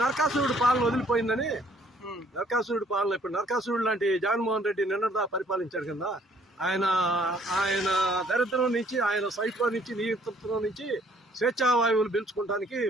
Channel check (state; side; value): normal; both; correlation 0.62